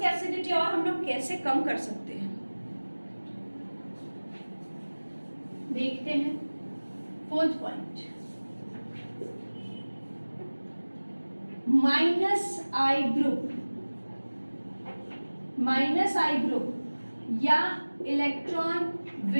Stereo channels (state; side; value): inverted; both; correlation -1.00